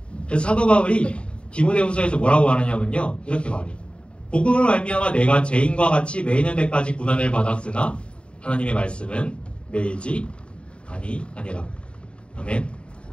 그래서 사도 바울이 디모데후서에서 뭐라고 말하냐면요. 이렇게 말해요. 복음을 말미암아 내가 죄인과 같이 매이는 데까지 고난을 받았으나 하나님의 말씀은 매이지 아니라. 아멘.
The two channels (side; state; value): right; late; 0.056 ms